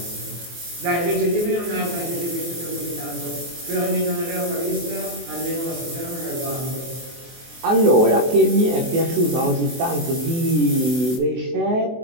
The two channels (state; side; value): late; left; 24 ms